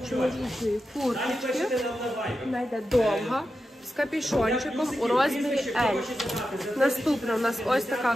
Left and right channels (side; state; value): both; normal; correlation 0.90